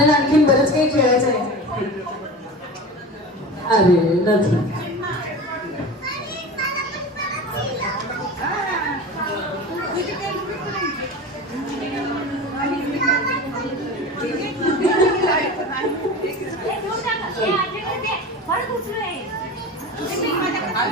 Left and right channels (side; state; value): both; normal; correlation 0.31